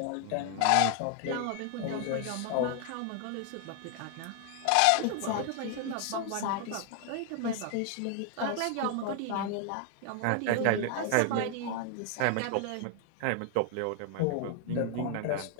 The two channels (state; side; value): different; both; correlation 0.00